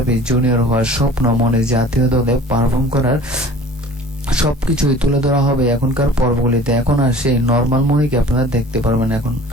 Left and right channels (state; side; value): normal; both; correlation 0.45